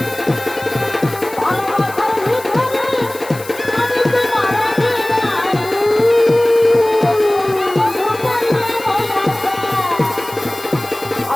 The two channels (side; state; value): left; noise; hiss, 17 dB below the sound